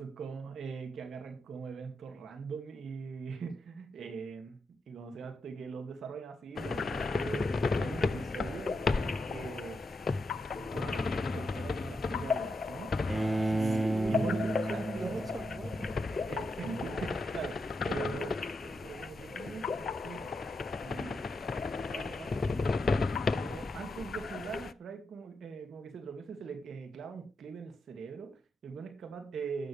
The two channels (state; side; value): normal; both; correlation 0.84